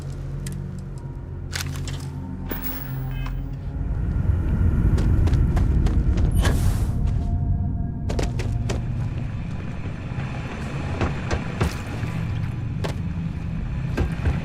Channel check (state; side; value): identical; both; correlation 1.00